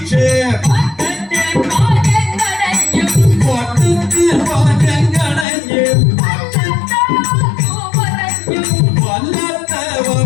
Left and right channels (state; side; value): drops out; right; at 5.5 s